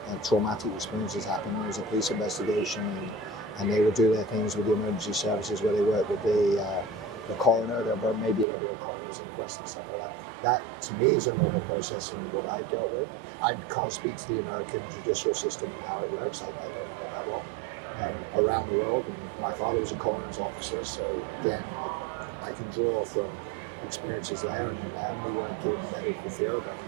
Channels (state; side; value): drops out; left; at 8.5 s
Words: traumatic experience has happened. There's a police investigation, and they will do their things with the emergency services where they work with the coroner. Maybe there'll be a coroner's inquest and stuff like that. That to me is a normal process in what I've dealt with. I can't speak to the American judicial system and how it works. I don't know it that well. Around the world, and my father was a coroner's officer, so again, like, I can draw from experiences there, and then Emily working in the medical field and